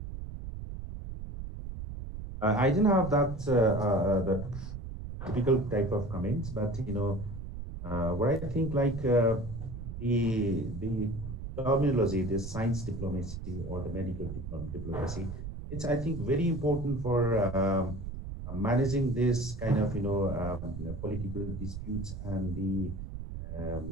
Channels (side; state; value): right; noise; rumble, 8 dB below the sound